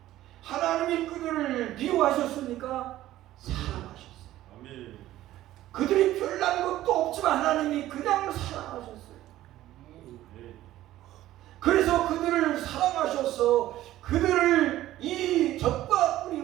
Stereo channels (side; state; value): left; quieter; 14.4 dB